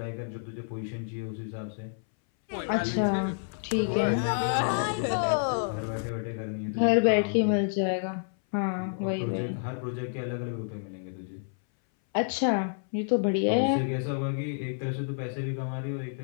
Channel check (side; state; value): right; silent; 58 dB below the other